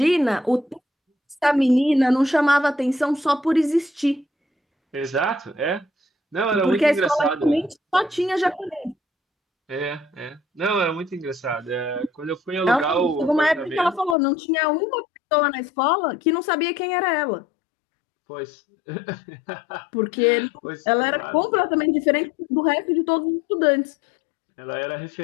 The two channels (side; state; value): right; drops out; at 14.2 s